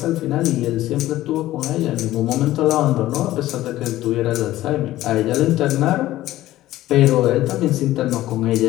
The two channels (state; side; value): quieter; right; 15.2 dB